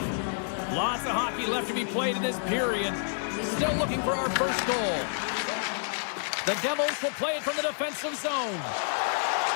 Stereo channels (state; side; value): silent; right; digital silence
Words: Lots of hockey left to be played in this period. Still looking for our first goal. The Devils will play it from the defensive zone.